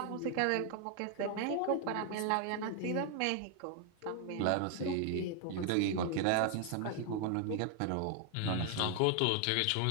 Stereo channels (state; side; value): different; both; correlation 0.00